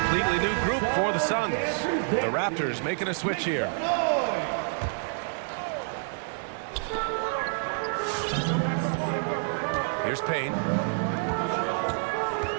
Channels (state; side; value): silent; left; digital silence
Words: new group for the Suns. The Raptors making a switch here. Here's Payne.